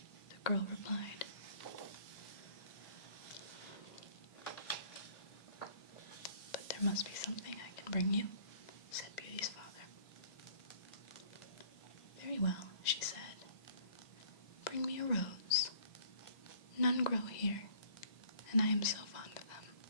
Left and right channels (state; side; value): late; right; 1.9 ms